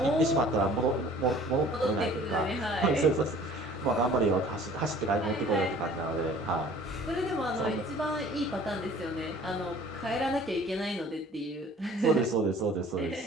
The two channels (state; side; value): normal; both; correlation 0.50